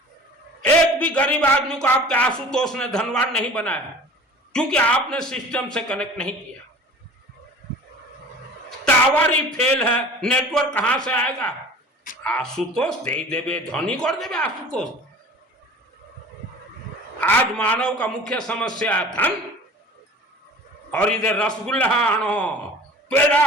एक भी गरीब आदमी को आपके आशुतोष ने धनवान नहीं बनाया, क्योंकि आपने सिस्टम से कनेक्ट नहीं किया। टावर ही फेल है, नेटवर्क कहां से आएगा? आशुतोष दे देवे, धनी कर देवे आशुतोष। आज मानव का मुख्य समस्या है धन, और इधर रसगुल्ला आनो, पेड़ा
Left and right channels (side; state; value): both; normal; correlation 0.42